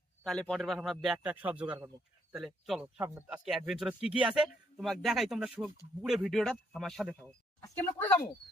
তাহলে পরের বার আমরা ব্যাগটা সব জোগাড় করবো। তাহলে চলো সামনে আজকে অ্যাডভেঞ্চার কি কি আছে তোমাকে দেখাই, তোমরা পুরো ভিডিওটা আমার সাথে থাকো। আজকে আমরা করে যাবো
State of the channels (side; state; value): both; normal; correlation 0.72